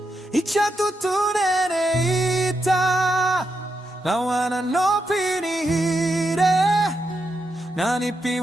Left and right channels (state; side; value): normal; both; correlation 0.84